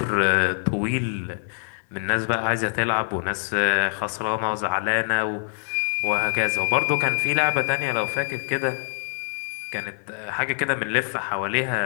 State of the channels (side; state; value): right; silent; digital silence